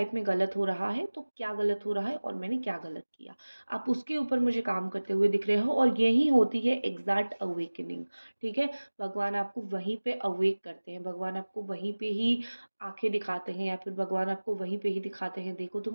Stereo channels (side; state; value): both; inverted; correlation -1.00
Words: में गलत हो रहा है, तो क्या गलत हो रहा है और मैंने क्या गलत किया। आप उसके ऊपर मुझे काम करते हुए दिख रहे हो और यही होती है एग्ज़ैक्ट अवेकनिंग, ठीक है? भगवान आपको वहीं पे अवेक करते हैं, भगवान आपको वहीं पे ही आँखें दिखाते हैं या फिर भगवान आपको वहीं पे ही दिखाते हैं, देखो